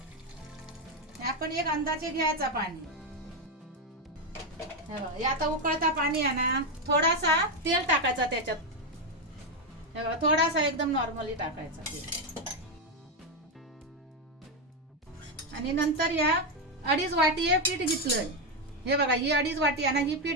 आपण एक अंदाजे घ्यायचा पाणी। हे आता उकळता पाणी आहे ना, थोडासा तेल टाकायचा त्याच्यात। हे बघा थोडासा एकदम नॉर्मली टाकायचा तेल, आणि नंतर या 2.5 वाटी हे पीठ घेतलंय। हे बघा ही 2.5 वाटी आहे ना, ही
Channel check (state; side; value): normal; both; correlation 0.07